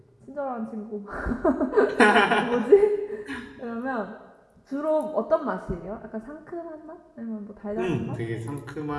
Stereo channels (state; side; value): identical; both; correlation 1.00